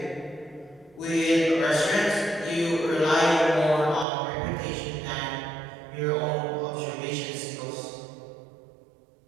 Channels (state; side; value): drops out; left; at 4.0 s